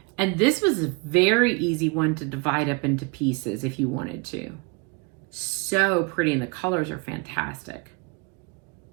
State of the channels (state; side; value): quieter; left; 30.1 dB